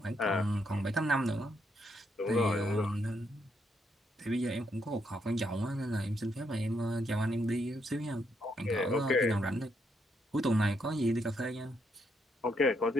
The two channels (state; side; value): normal; both; correlation 0.77